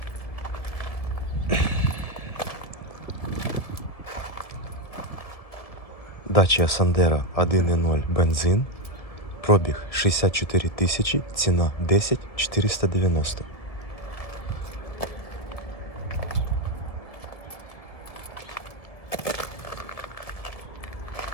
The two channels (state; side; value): late; right; 1.7 ms